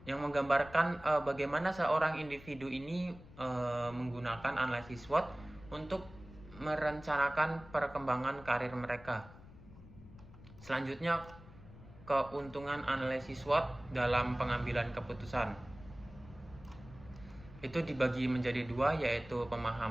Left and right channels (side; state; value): left; noise; rumble, 19 dB below the sound